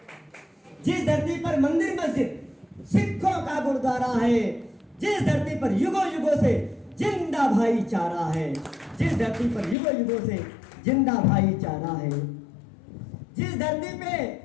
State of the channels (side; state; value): right; drops out; at 9.8 s